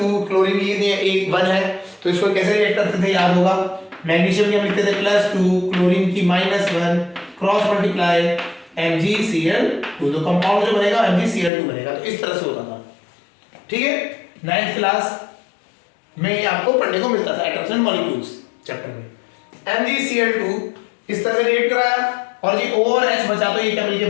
क्लोरीन की थी 1 है, तो इसको कैसे रिएक्ट करते थे याद होगा, मैग्नीशियम की हम लिखते थे +2, क्लोरीन की -1, क्रॉस मल्टीप्लाई MgCl2, तो कंपाउंड जो बनेगा MgCl2 बनेगा। तो इस तरह से होता था, ठीक है। 9th क्लास में ये आपको पढ़ने को मिलता था, एटम्स एंड मॉलिक्यूल्स चैप्टर में। MgCl2 इस तरह से रिएक्ट कराया, और ये O और H बचा, तो ये क्या मिलके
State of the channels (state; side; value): drops out; right; at 11.5 s